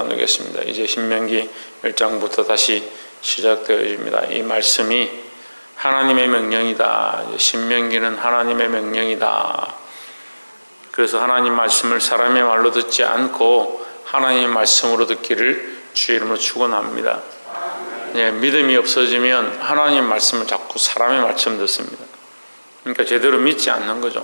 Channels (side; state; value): both; inverted; correlation -1.00